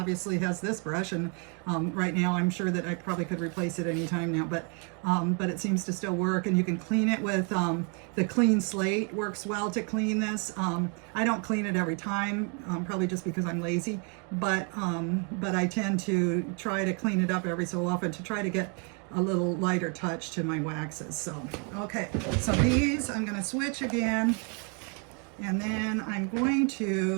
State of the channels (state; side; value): quieter; left; 37.0 dB